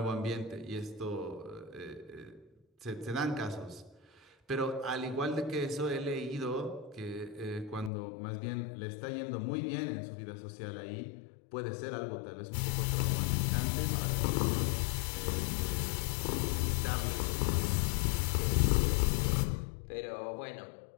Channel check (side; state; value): right; drops out; at 7.9 s